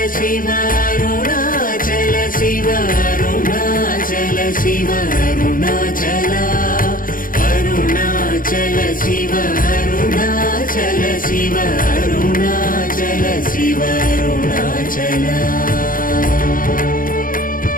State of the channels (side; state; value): right; late; 0.40 ms